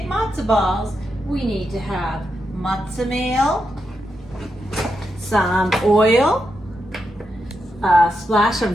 matzo balls, we need to have matzah meal, some oil, a splash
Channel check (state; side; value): normal; both; correlation 0.85